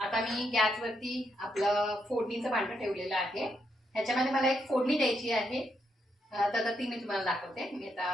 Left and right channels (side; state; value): both; normal; correlation 0.79